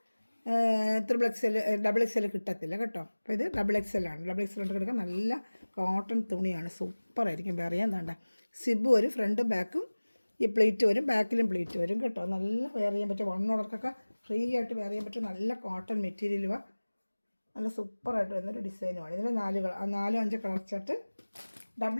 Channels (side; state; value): both; inverted; correlation -1.00